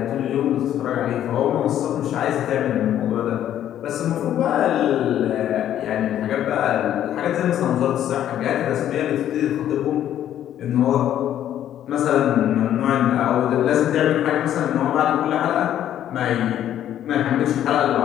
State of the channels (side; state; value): right; quieter; 11.1 dB